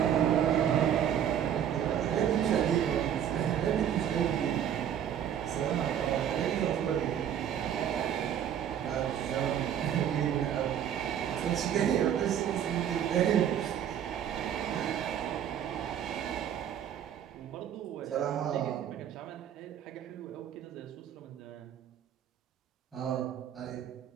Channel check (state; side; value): quieter; left; 9.6 dB